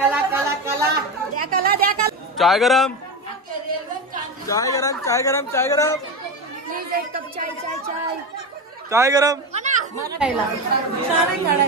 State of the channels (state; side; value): normal; both; correlation 0.19